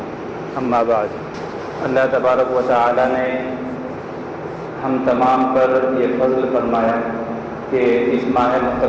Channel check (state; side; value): identical; both; correlation 1.00